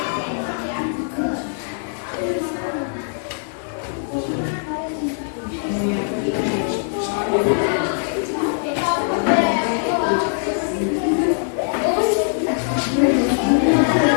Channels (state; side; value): silent; right; digital silence